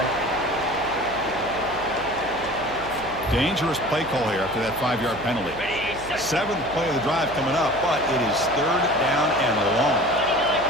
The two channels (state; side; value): noise; right; hum, 15 dB below the sound